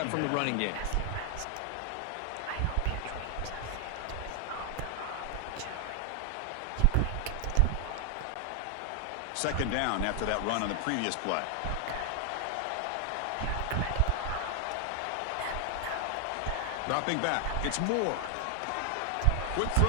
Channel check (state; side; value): different; both; correlation 0.00